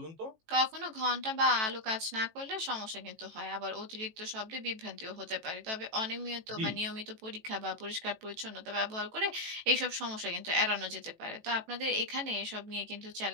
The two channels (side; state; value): left; late; 18 ms